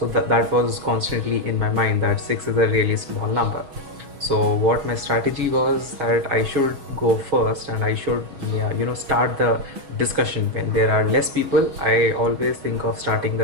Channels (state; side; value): late; left; 6.2 ms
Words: that was constantly in my mind that six is a really small number. So what my strategy was that I should go first and I should, yeah, start the discussion. When there are less people, I always think of starting